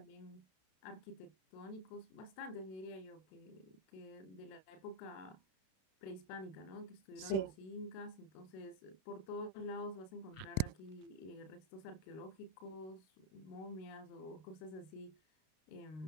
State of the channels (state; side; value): late; right; 31 ms